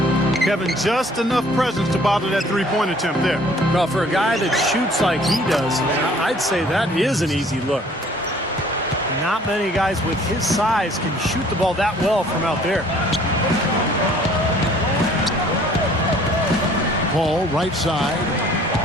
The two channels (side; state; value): both; normal; correlation 0.55